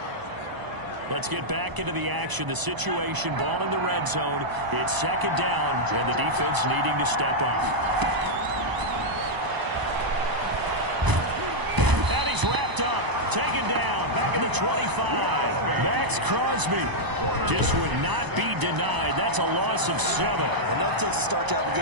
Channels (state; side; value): late; left; 1.0 ms